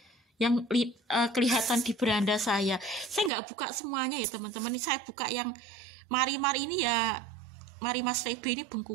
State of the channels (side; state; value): left; drops out; at 3.3 s